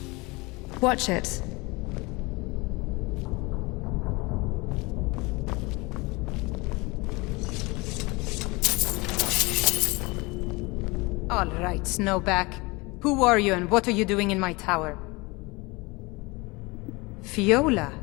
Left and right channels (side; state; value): right; quieter; 25.1 dB